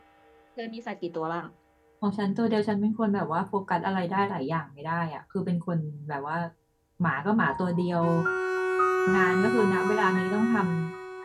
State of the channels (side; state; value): both; identical; correlation 1.00